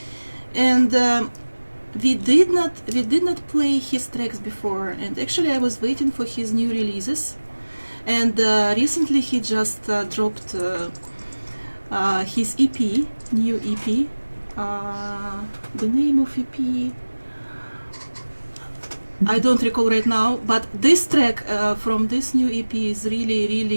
and we did not play his tracks before, and actually I was waiting for his new releases, and recently he just dropped his EP, new EP. The name of EP I don't recall right now, but this track from this new EP is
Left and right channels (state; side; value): inverted; both; correlation -1.00